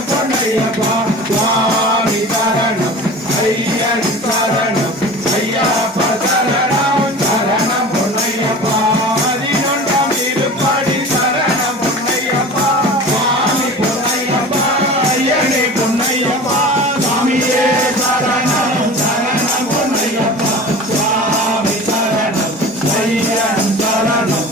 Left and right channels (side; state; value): both; normal; correlation 0.37